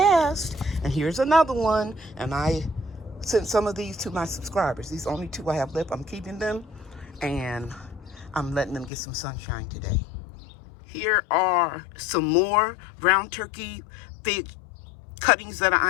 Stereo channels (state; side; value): drops out; right; at 8.9 s